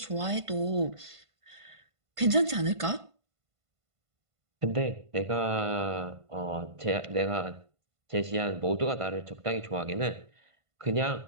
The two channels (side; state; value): left; late; 1.5 ms